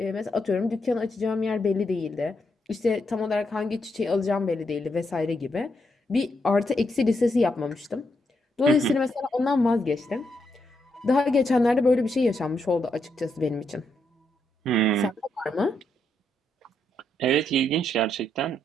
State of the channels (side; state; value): both; normal; correlation 0.80